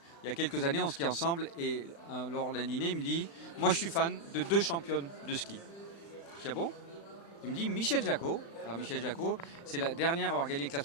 il y a quelques années, on skie ensemble et lors d'un dîner, il me dit « Moi, je suis fan de 2 championnes de ski. » Je dis « Ah bon ?» Il me dit « Michel Jacot. » Alors, Michel Jacot, c'est la dernière à avoir gagné le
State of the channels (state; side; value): late; right; 35 ms